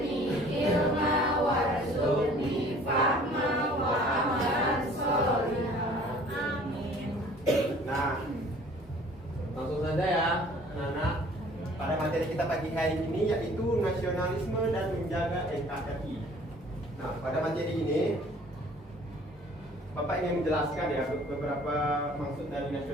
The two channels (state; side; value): normal; both; correlation 0.52